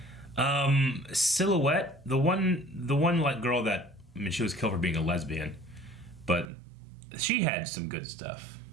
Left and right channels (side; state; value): left; drops out; at 6.5 s